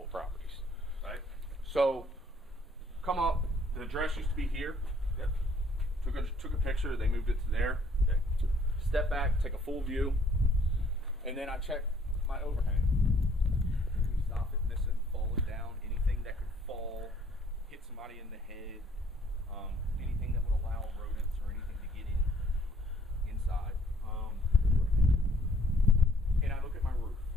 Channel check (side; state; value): both; normal; correlation 0.62